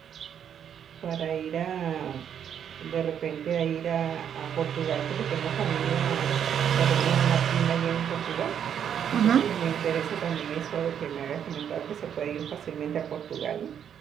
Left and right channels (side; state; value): left; quieter; 8.7 dB